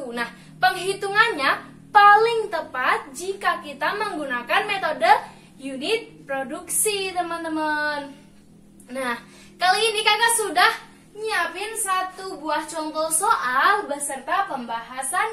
Nah, penghitungannya paling tepat jika kita menggunakan metode unit produksi, teman-teman. Nah, kali ini kakak sudah nyiapin satu buah contoh soal beserta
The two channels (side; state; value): both; identical; correlation 1.00